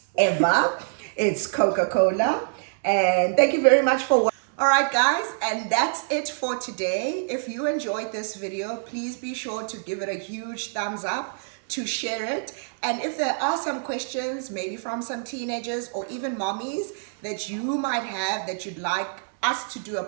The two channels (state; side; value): silent; left; 61 dB below the other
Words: ever. It's Coca-Cola. And thank you very much for watching. All right, guys, and that's it for today. If you enjoyed this video, please be sure to give it a huge thumbs up, to share it. And if there are some questions, maybe from some teenagers or even mommies that you might have that you'd like us to do a